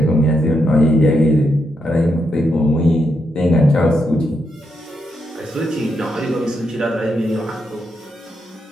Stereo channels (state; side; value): normal; both; correlation 0.82